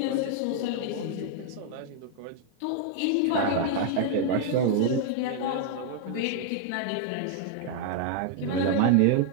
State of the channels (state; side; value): different; both; correlation 0.00